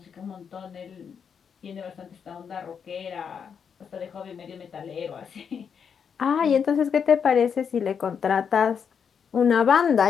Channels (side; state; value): right; quieter; 7.0 dB